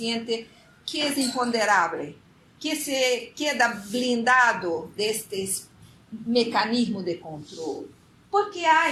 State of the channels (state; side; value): identical; both; correlation 1.00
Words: que é imponderável, que se queda blindado destes mecanismos de controle. Porque há